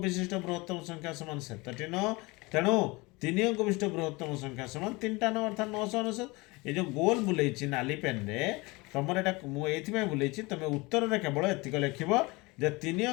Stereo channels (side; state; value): right; quieter; 24.4 dB